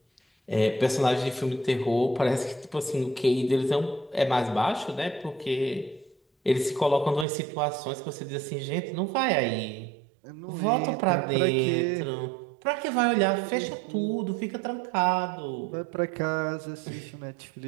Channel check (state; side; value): drops out; left; at 7.2 s